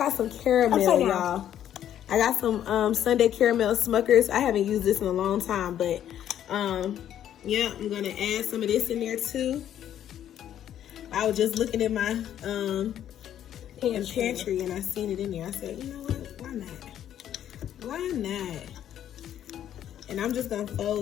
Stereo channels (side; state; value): right; quieter; 10.7 dB